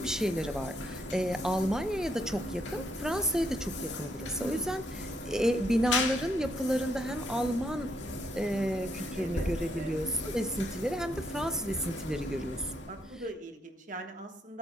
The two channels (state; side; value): normal; both; correlation 0.75